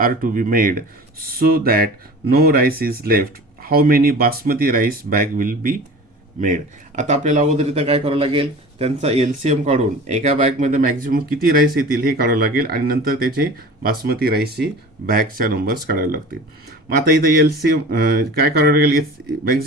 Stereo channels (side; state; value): both; normal; correlation 0.38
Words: to be made so that no rice is left. How many basmati rice bag will be made? आता आपल्याला अगोदर इथं काय करावं लागेल, त्यांचा LCM काढून एका बॅगमध्ये मॅक्झिमम किती राईस येतील हे काढावं लागेल, आणि नंतर त्याचे बासमती राईसची बॅगच्या नंबर्स काढावे लागतील. मग आता इथं LCM काय करावं लागेल,